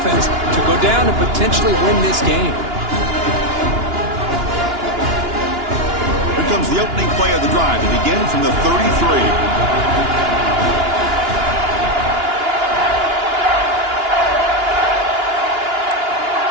to go down and potentially win this game. Here comes the opening play of the drive to begin from the 33.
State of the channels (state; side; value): late; left; 2.9 ms